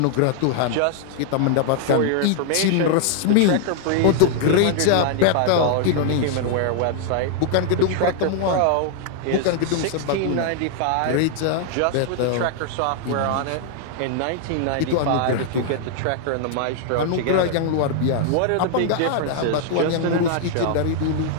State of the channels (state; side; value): different; both; correlation 0.00